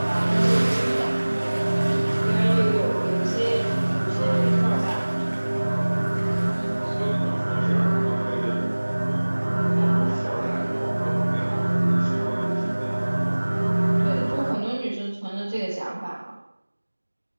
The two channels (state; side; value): inverted; both; correlation -1.00